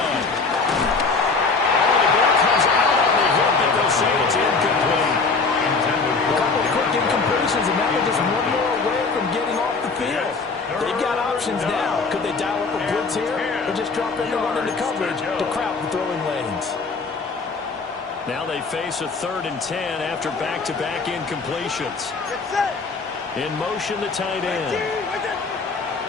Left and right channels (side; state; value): right; quieter; 4.3 dB